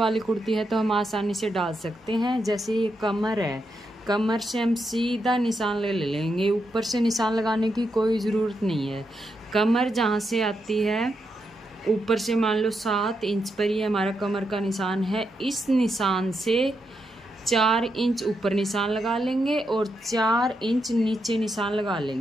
कुर्ती है तो हम आसानी से डाल सकते हैं। जैसे ये कमर है, कमर से हम सीधा निशान ले लेंगे, ऊपर से निशान लगाने की कोई ज़रूरत नहीं है। कमर जहाँ से आती है ऊपर से मान लो 7 इंच पर ही हमारा कमर का निशान है। इस निशान से 4 इंच ऊपर निशान लगा लेंगे और 4 इंच नीचे निशान लगा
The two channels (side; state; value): both; normal; correlation 0.83